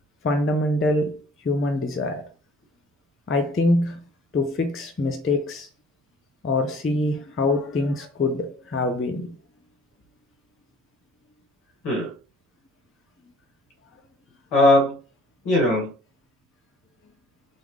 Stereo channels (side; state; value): both; normal; correlation 0.55